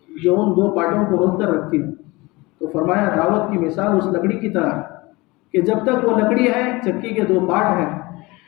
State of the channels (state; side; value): quieter; right; 22.9 dB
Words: جو ان 2 پارٹوں کو روک کر رکھتی ہے۔ تو فرمایا دعوت کی مثال اس لکڑی کی طرح کہ جب تک وہ لکڑی ہے، چکی کے 2 پارٹ ہیں،